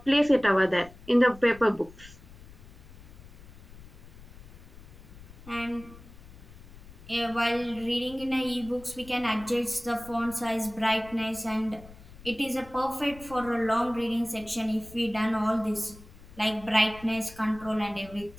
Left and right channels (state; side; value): noise; left; rumble, 19 dB below the sound